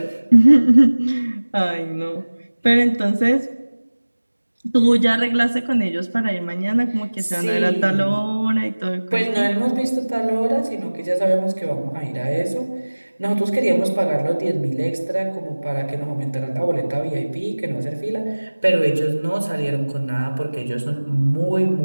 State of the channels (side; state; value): both; inverted; correlation -1.00